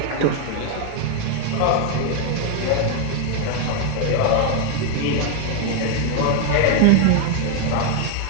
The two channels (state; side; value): different; both; correlation 0.01